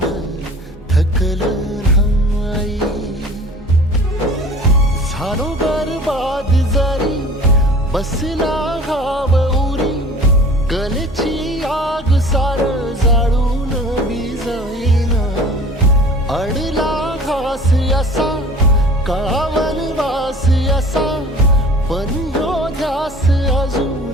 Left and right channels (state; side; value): normal; both; correlation 0.44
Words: थकलं नाही. झालो बरबाद जरी बसला घाव उरी, कलेची आग सार जाळून विजाईना. अडला घास असा काळा वनवास असा, पण ह्यो ध्यास